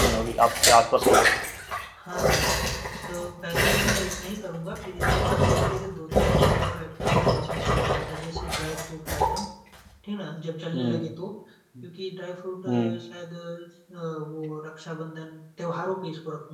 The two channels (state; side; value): identical; both; correlation 1.00